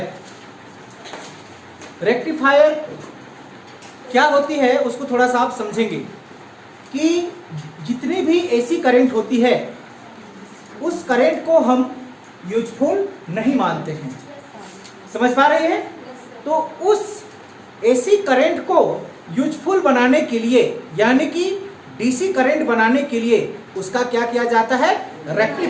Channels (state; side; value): identical; both; correlation 1.00